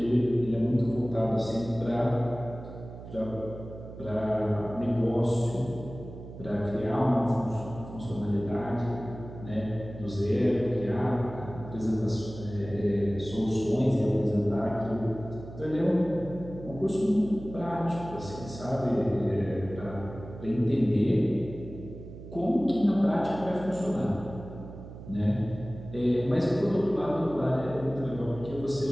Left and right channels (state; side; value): noise; right; hum, 13 dB below the sound